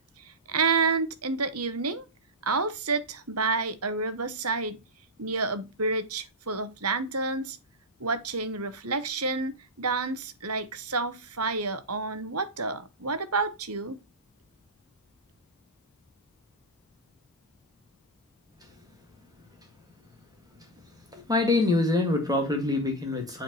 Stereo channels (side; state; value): both; normal; correlation -0.04